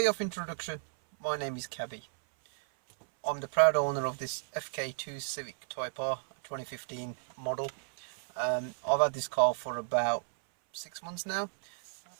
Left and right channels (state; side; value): silent; left; 56 dB below the other